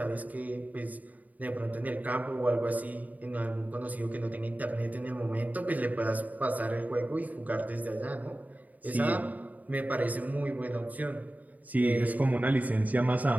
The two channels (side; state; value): left; late; 0.076 ms